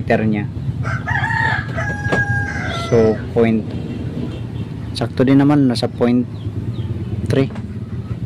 niya. So sakto din naman, nasa 0.3.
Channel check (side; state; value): both; identical; correlation 1.00